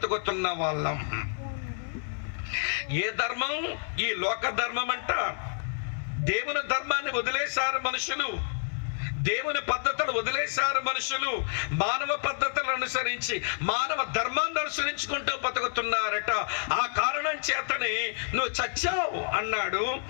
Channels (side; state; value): right; silent; 59 dB below the other